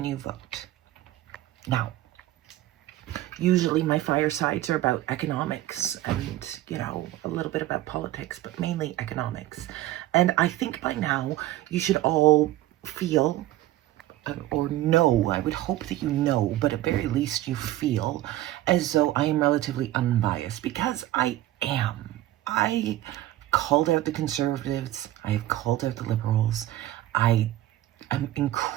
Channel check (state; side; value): quieter; left; 15.0 dB